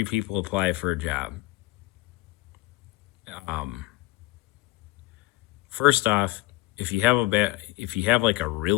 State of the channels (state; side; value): quieter; right; 20.3 dB